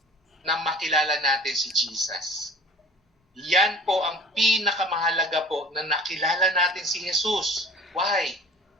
Na makilala natin si Jesus. Yan po ang pinakamahalaga po na nakilala natin si Jesus. Why?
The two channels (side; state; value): both; normal; correlation 0.44